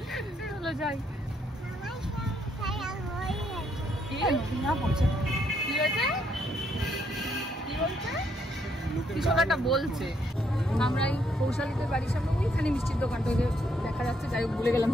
চলো যাই। কি হয়েছে? কিছু একটা বলছে। আমরা এই কৌশালীদের বাড়ির সামনে ওইখানে মিষ্টির দোকানটা দেখা যাচ্ছে, যাই হোক ভুলে গেলাম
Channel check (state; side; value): normal; both; correlation 0.73